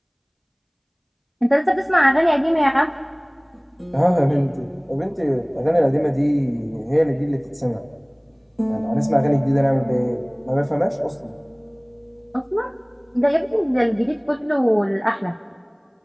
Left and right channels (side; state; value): both; identical; correlation 1.00